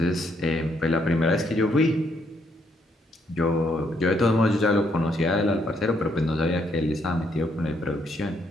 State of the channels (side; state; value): both; normal; correlation 0.73